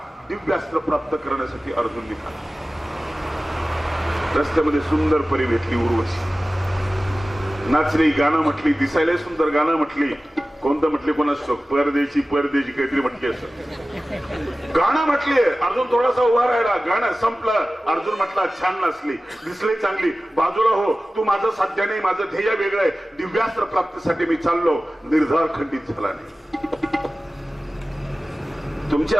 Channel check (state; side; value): normal; both; correlation 0.96